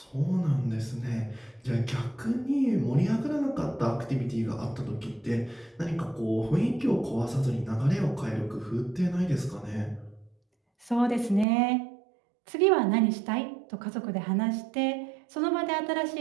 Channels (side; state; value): left; drops out; at 11.5 s